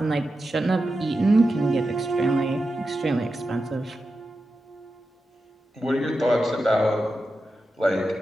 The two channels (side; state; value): both; normal; correlation 0.90